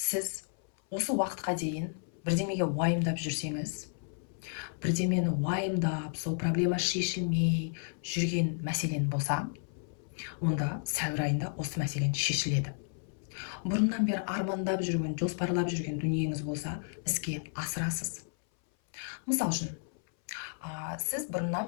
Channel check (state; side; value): silent; right; 56 dB below the other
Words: осы уақытқа дейін бірдемеге уайымдап жүрсеңіз, бірдемені уайымдап, сол проблема шешілмей жүрген мәселен болса, онда сәуір айында осы мәселен шешіледі. Бұрыннан бері армандап жүрген, жоспарлап жүрген дүниеңіз болса, іске асырасыз. Мысал үшін, сіз бұрыннан